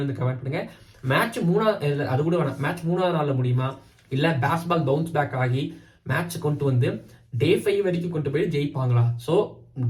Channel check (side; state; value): both; identical; correlation 1.00